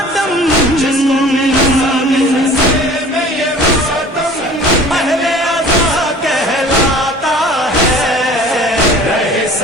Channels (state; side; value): normal; both; correlation 0.46